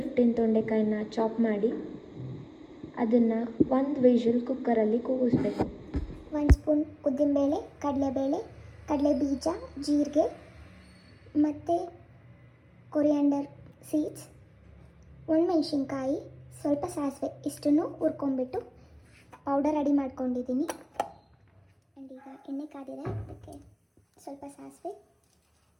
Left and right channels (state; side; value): identical; both; correlation 1.00